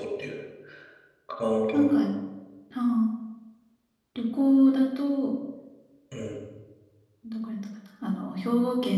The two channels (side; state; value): both; identical; correlation 1.00